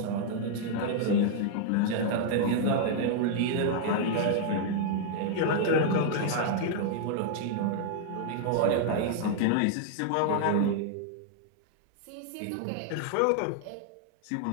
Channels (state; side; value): different; both; correlation -0.01